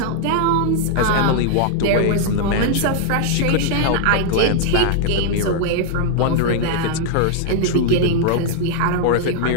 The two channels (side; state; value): both; different; correlation -0.01